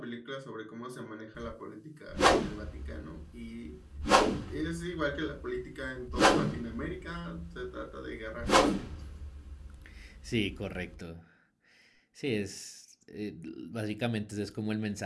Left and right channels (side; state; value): both; identical; correlation 1.00